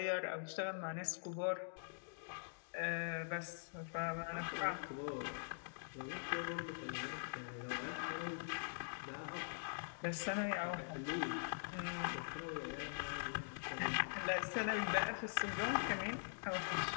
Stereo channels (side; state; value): right; silent; digital silence